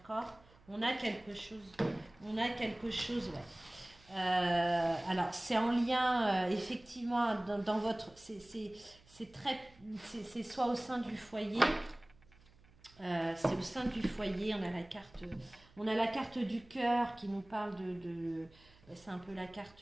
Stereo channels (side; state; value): right; noise; hum, 27 dB below the sound